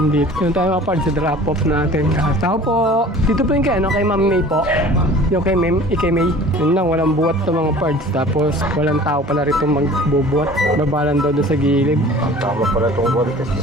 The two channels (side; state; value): both; normal; correlation 0.45